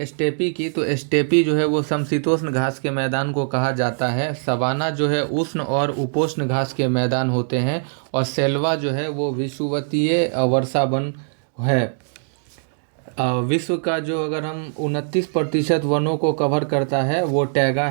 स्टेपी की, तो स्टेपी जो है वो समशीतोष्ण घास के मैदान को कहा जाता है। सवाना जो है उष्ण और उपोष्ण घास के मैदान होते हैं, और सेल्वा जो है वो विषुवतीय वर्षा वन है। विश्व का जो अगर हम 29% वनों को कवर करता है वो टैगा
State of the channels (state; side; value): silent; left; digital silence